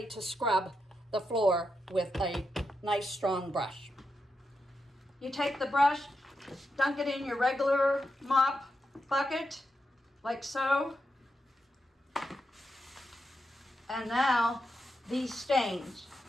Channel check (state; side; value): normal; both; correlation 0.86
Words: to scrub the floor with a nice strong brush. You take the brush, dunk it in your regular mop bucket, like so, and now these stains